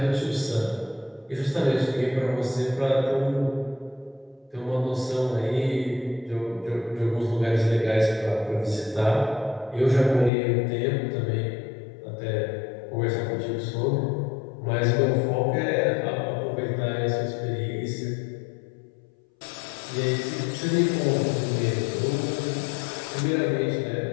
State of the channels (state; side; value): drops out; right; at 10.3 s